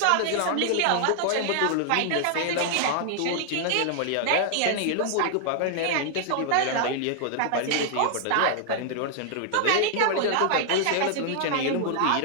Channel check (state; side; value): different; both; correlation 0.00